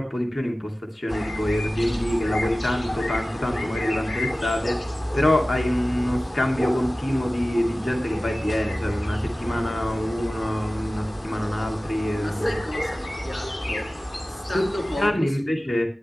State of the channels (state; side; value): normal; both; correlation 0.97